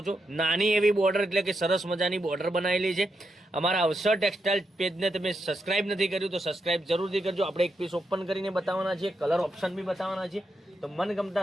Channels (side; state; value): both; normal; correlation 0.83